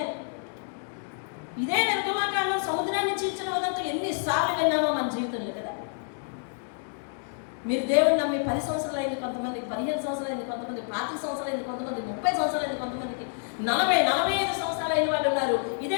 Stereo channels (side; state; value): right; silent; 59 dB below the other